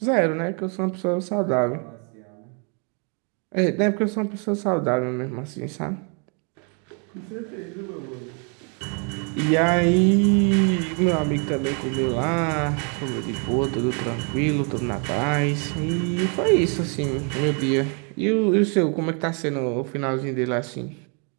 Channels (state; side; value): quieter; left; 37.6 dB